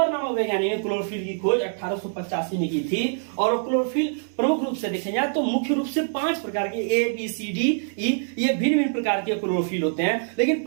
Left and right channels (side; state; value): left; silent; digital silence